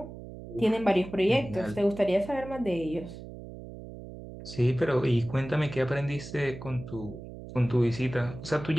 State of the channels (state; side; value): noise; right; hum, 13 dB below the sound